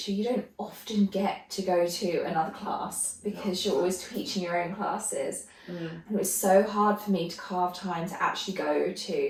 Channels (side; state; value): both; identical; correlation 1.00